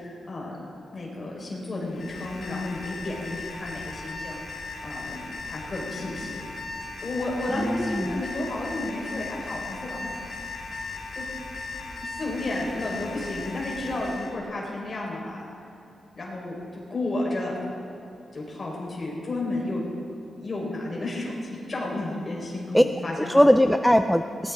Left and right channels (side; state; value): both; normal; correlation 0.94